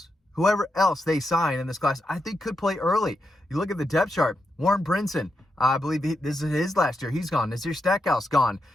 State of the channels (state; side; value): normal; both; correlation 0.85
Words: they sign in this class, I think could play early. You look at the depth chart. Warren Brinson, I believe this is his last year. He's gone. Nazir Stackhouse gone.